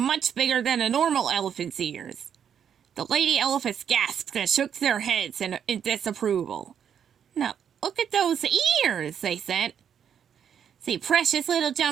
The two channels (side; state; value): left; quieter; 8.3 dB